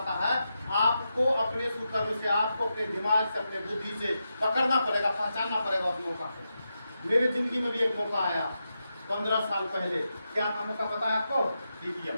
है। आपको अपने सुकर्म से, आपको अपने दिमाग से, अपने बुद्धि से पकड़ना पड़ेगा, पहचानना पड़ेगा उस मौका को। मेरे जिंदगी में भी एक मौका आया 15 साल पहले। क्या था मौका पता है आपको?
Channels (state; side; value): inverted; both; correlation -0.88